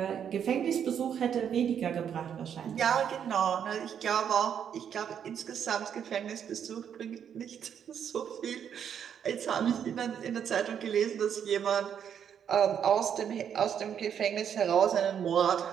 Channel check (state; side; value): quieter; left; 8.4 dB